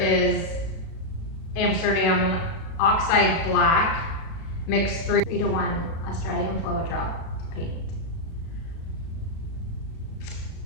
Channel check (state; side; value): late; right; 36 ms